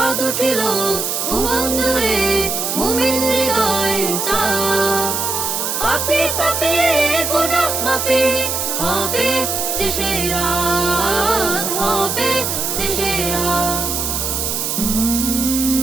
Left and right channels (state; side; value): noise; right; hiss, 1 dB below the sound